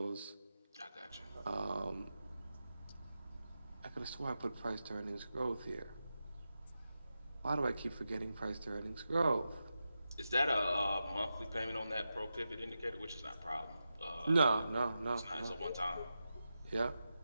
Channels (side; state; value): both; inverted; correlation -0.90